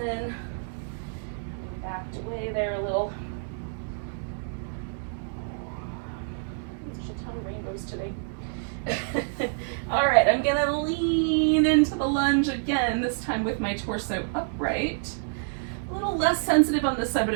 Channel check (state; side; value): silent; left; digital silence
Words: Backed away there a little. There's a ton of rainbows today. All right, I'm gonna lean into the lunge again, this time with my torso upright. A little less sensitive on this side,